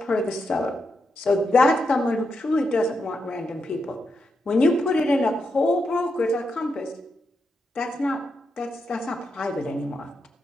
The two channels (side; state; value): both; normal; correlation 0.84